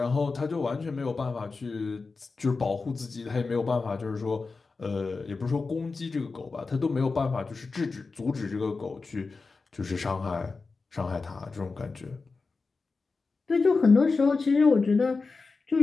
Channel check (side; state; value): right; quieter; 4.2 dB